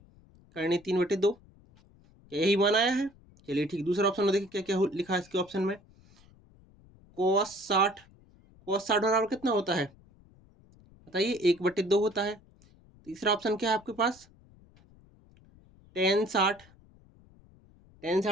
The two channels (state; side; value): noise; left; rumble, 27 dB below the sound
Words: करनी 3/2। क्या यही मान आया है, चलिए ठीक। दूसरा ऑप्शन में देखिए क्या क्या लिखा है इसके ऑप्शन में, cos 60 बराबर कितना होता है, बताइए, 1/2 होता है। तीसरा ऑप्शन क्या है आपके पास, tan 60, tan